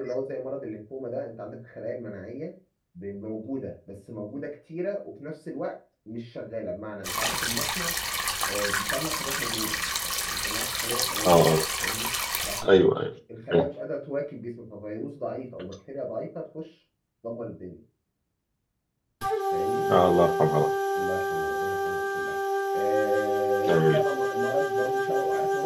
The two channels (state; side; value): identical; both; correlation 1.00